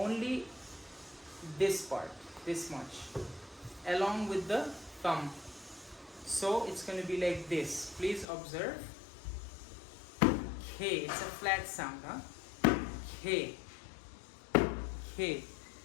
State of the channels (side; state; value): right; drops out; at 8.2 s